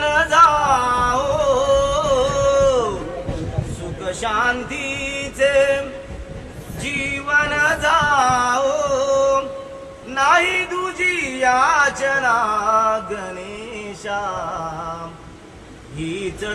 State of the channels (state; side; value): identical; both; correlation 1.00